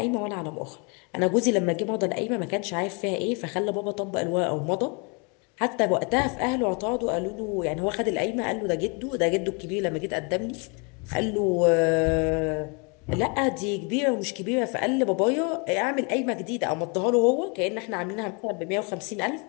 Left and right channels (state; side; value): quieter; right; 33.4 dB